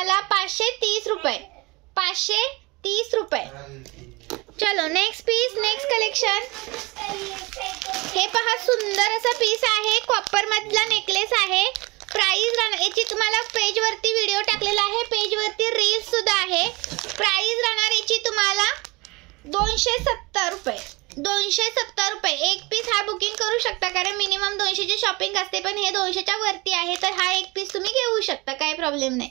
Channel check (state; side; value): quieter; left; 24.4 dB